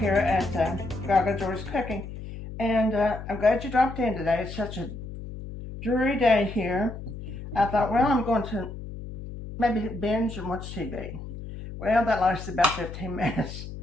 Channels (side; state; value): left; noise; hum, 10 dB below the sound